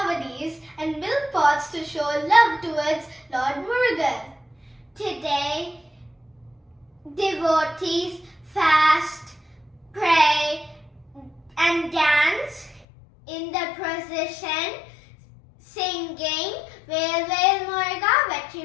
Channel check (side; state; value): right; drops out; at 12.9 s